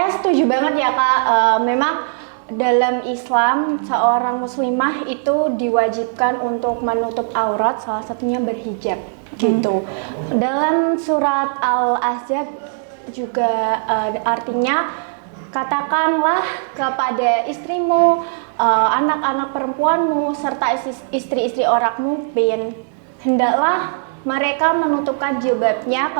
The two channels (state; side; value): silent; left; 67 dB below the other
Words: setuju banget ya, Kak. Memang dalam Islam seorang muslimah itu diwajibkan untuk menutup aurat, salah satunya berhijab gitu. Dalam surat Al-Ahzab juga artinya katakanlah kepada istrimu, anak-anak perempuanmu serta istri-istri orangmu, hendaklah mereka menutupkan jilbabnya